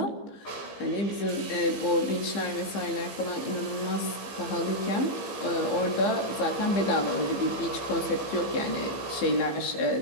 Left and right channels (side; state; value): right; late; 15 ms